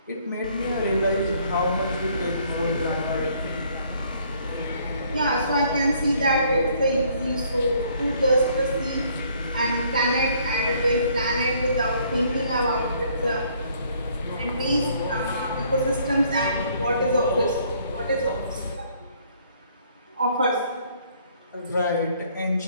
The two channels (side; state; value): both; inverted; correlation -0.64